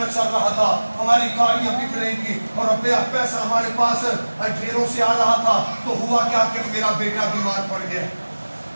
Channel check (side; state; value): both; inverted; correlation -1.00